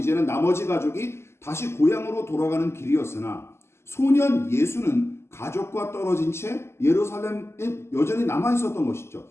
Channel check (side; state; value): right; late; 0.12 ms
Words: 나머지 가족이 다시 고향으로 돌아가는 길이었으나 소년 예수는 가족과 떨어진 채 예루살렘에 여전히 남아 있었던 것이죠.